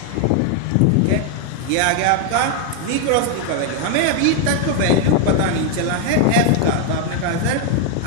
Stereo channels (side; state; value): both; different; correlation 0.00